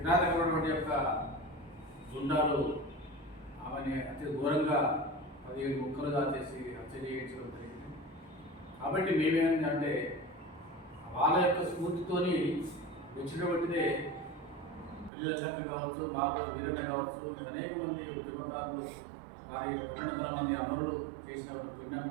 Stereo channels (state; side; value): drops out; left; at 15.1 s